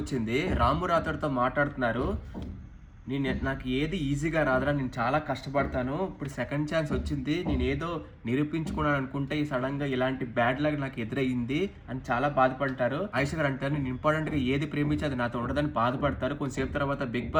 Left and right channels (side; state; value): both; identical; correlation 1.00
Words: వచ్చింది. రాము రాథోడ్తో మాట్లాడుతున్నారు. నాకు ఏది ఈజీగా రాదురా, నేను చాలా కష్టపడతాను, ఇప్పుడు సెకండ్ ఛాన్స్ వచ్చింది, నేను ఏదో నిరూపించుకున్నాను అనుకుంటే ఈ సడన్ గా ఇలాంటి బ్యాడ్ లక్ నాకు ఎదురయ్యింది అని చాలా బాధపడతారు. ఆయిషా గారు అంటారు, నేను ఇంపార్టెంట్ గా ఏది ప్రేమించి అది నాతో ఉండదని బాధపడతారు. కొంతసేపు తర్వాత బిగ్